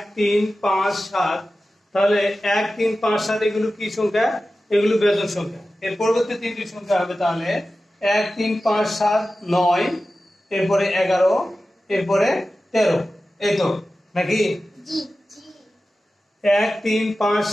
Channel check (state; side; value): normal; both; correlation 0.94